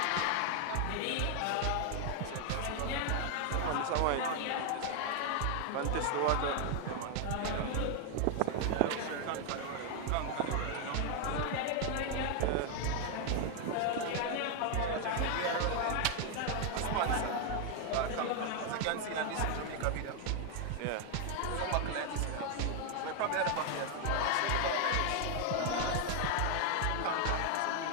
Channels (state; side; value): different; both; correlation 0.00